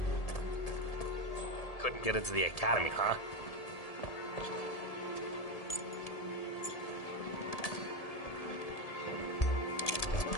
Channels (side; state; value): right; late; 1.7 ms